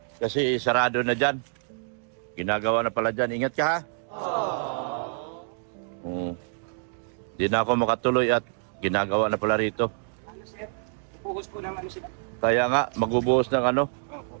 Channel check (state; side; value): silent; left; 60 dB below the other